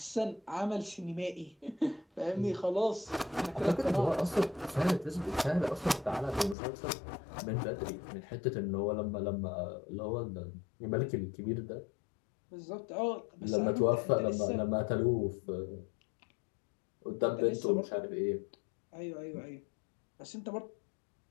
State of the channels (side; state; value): right; drops out; at 6.6 s